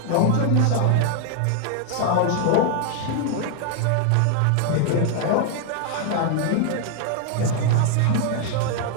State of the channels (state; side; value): different; both; correlation 0.00